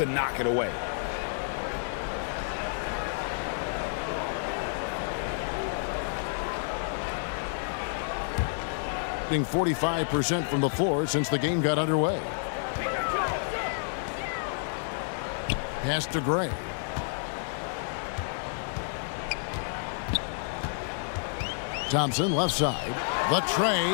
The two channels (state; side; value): silent; right; digital silence